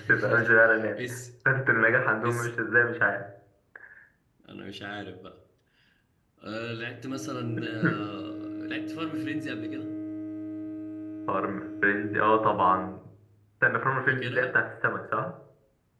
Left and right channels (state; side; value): identical; both; correlation 1.00